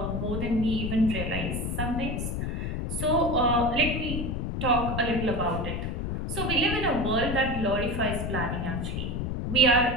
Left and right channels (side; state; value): left; noise; rumble, 2 dB below the sound